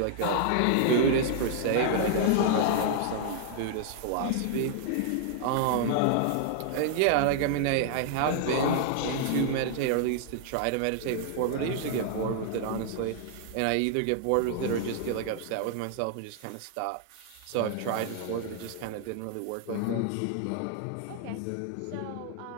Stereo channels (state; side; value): different; both; correlation -0.01